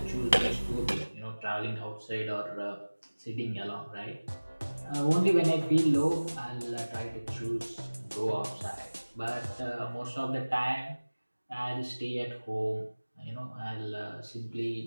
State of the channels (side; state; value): both; inverted; correlation -1.00